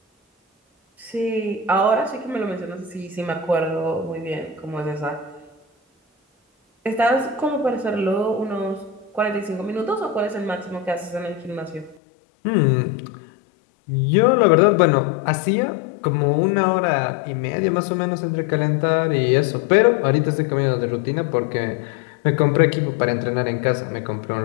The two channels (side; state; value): right; drops out; at 12.0 s